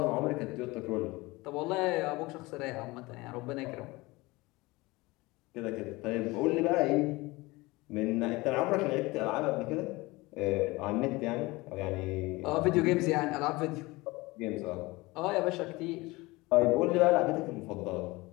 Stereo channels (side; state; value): right; quieter; 22.1 dB